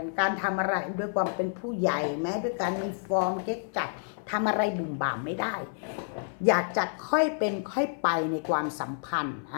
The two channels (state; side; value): silent; right; 57 dB below the other